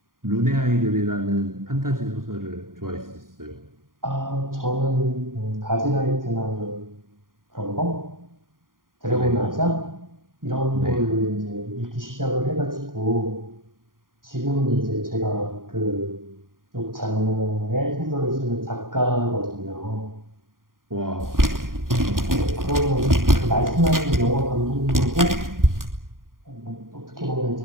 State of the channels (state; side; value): late; left; 0.91 ms